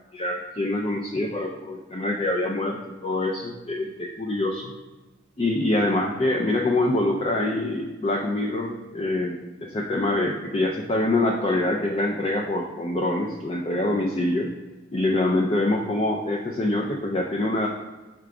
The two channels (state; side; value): normal; both; correlation 0.56